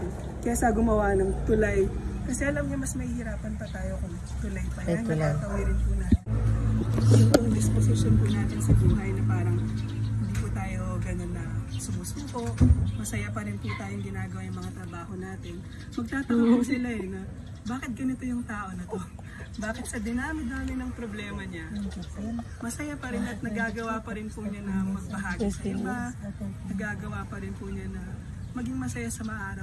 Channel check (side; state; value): both; identical; correlation 1.00